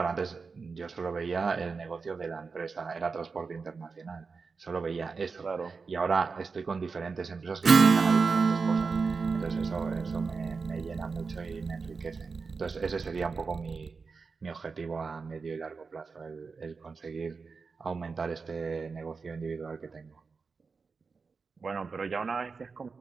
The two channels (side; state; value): left; quieter; 4.7 dB